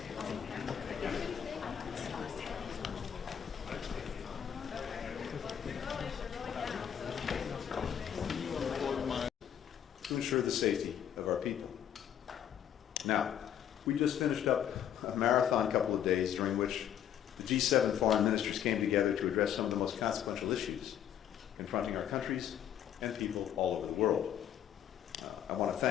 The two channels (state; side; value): quieter; right; 9.7 dB